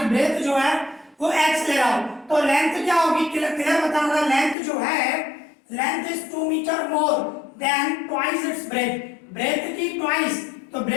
ब्रेथ जो है वो x ले रहा हूं, तो लेंथ क्या होगी, क्लियर बता रहा, लेंथ जो है length is 2 metre more than twice its breadth, breadth की ट्वाइस, तो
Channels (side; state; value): right; drops out; at 4.5 s